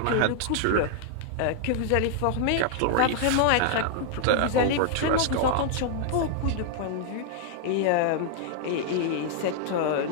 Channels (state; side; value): different; both; correlation 0.00